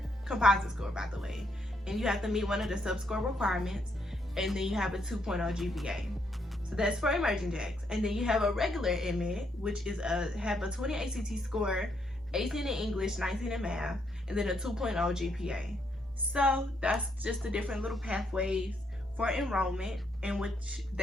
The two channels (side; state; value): both; normal; correlation 0.75